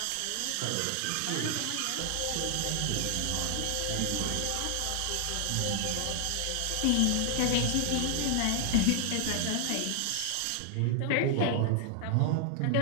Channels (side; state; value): both; different; correlation 0.00